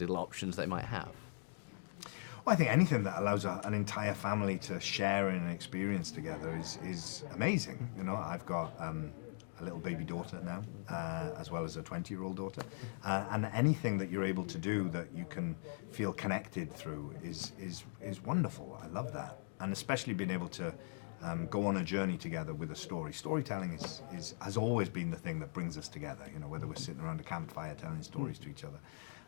little options they might have? Well, I think anything that allows an entire family to share in an experience together is amazing. You know, I've got a little baby daughter now, as well as a 20-year-old daughter, and anything that you're able to do that you can feel connected through is wonderful. I love that, and especially being able to go on a journey together with a story. Storytelling has always been the thing that brings us together. You know, whether we're sitting around a campfire telling stories to each other.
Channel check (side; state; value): right; silent; digital silence